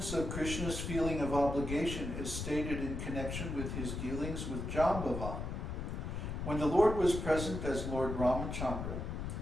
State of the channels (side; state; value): left; noise; rumble, 4 dB below the sound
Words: of Krishna's feeling of obligation is stated in connection with his dealings with Jambavan. When the Lord was present as Lord Ramachandra,